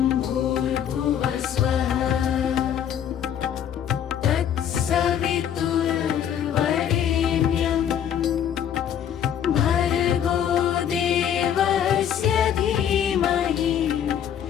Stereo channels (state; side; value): quieter; right; 9.3 dB